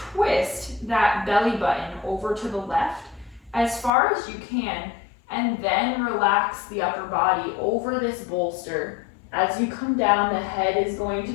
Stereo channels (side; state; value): right; drops out; at 3.9 s